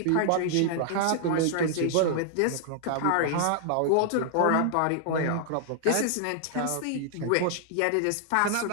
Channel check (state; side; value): different; both; correlation -0.01